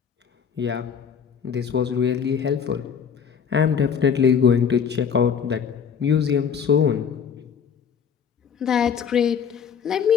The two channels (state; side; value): quieter; right; 7.2 dB